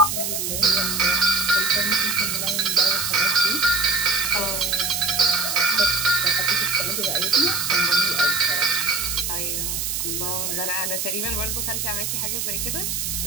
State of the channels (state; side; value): noise; right; hiss, 2 dB below the sound